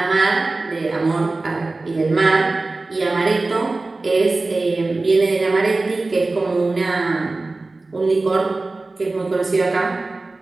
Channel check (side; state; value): left; quieter; 3.3 dB